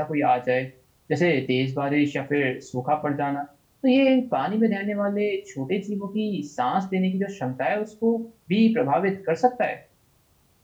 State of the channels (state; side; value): identical; both; correlation 1.00